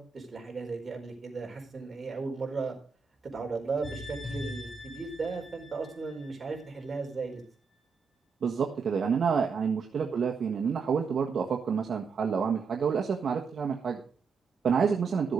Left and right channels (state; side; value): quieter; left; 5.5 dB